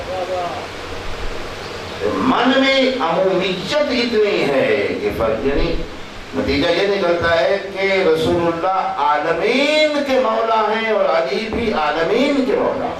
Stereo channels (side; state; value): both; identical; correlation 1.00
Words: من میں عمومیت اتنی ہے کہ فرق، یعنی نتیجہ یہ نکلتا ہے کہ رسول اللہ عالمین کے مولا ہیں اور علی بھی عالمین کے مولا